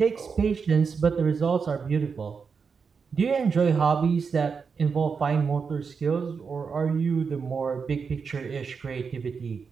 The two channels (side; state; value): left; quieter; 5.6 dB